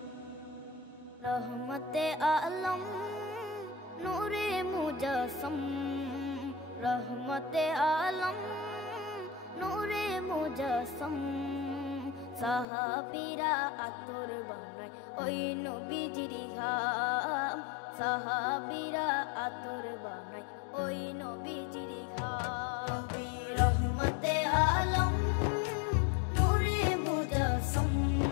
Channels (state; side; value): drops out; right; at 12.7 s